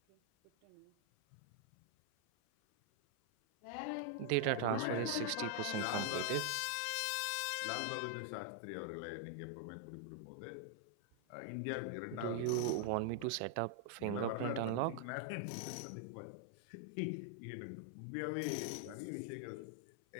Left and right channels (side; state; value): both; different; correlation 0.00